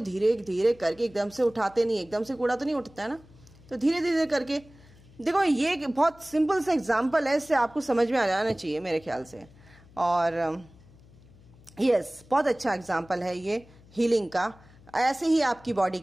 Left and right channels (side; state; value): left; noise; hum, 25 dB below the sound